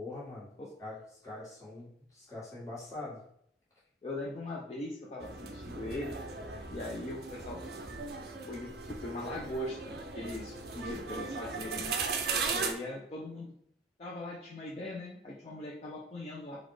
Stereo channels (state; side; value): normal; both; correlation 0.36